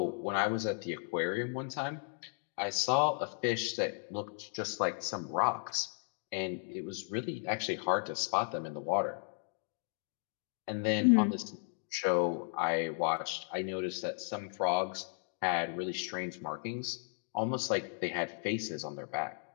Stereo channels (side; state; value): right; silent; 54 dB below the other